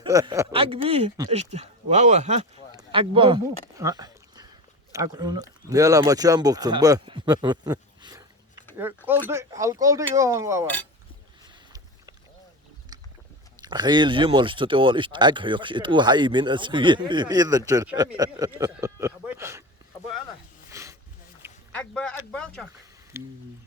Agbi işte. Wow ha. Agba. Agunu. Ne la maçan boktun bu. Halk oldu yoğun wow. خيل جمل استطول اشت اكحيق اتو حي من اسوي اذا تشر Agba çak.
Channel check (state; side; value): normal; both; correlation 0.27